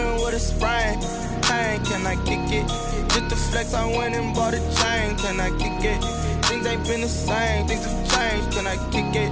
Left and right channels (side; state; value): both; identical; correlation 1.00